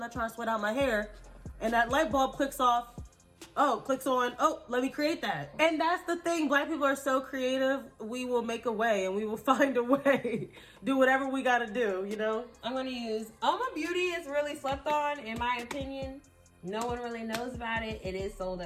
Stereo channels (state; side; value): identical; both; correlation 1.00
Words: trying to sweat out my hair. And that light bulb clicks on, let me create that. And that's the thing, black people are so creative, we will make a way and we will find a way. Do whatever we gotta do, you know? I'm going to use Oma Beauty is really slept on, in my opinion. No one really knows about it. It is sold